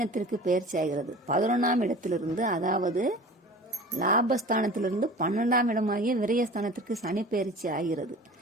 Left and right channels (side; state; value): both; normal; correlation 0.40